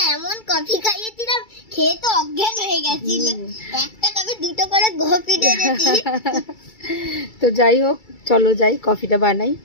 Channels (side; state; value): right; late; 2.3 ms